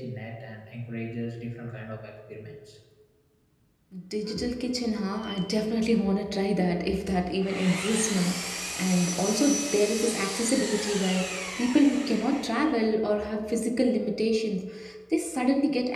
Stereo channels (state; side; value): identical; both; correlation 1.00